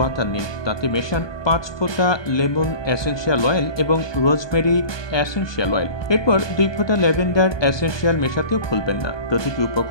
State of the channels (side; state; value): right; late; 1.2 ms